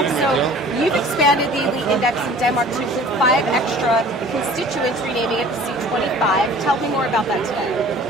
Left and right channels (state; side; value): normal; both; correlation 0.47